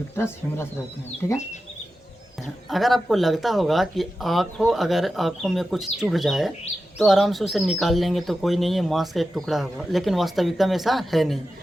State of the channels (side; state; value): both; normal; correlation 0.92